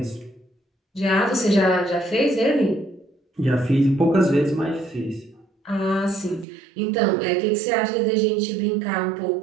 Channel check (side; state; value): left; drops out; at 6.5 s